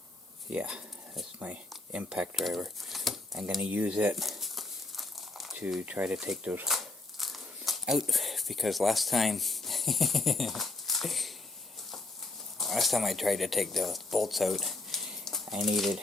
Yeah, that's my impact driver. I'm going to use it to try to take those out, because last time I tried to take the bolts out, I needed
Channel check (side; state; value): right; quieter; 3.1 dB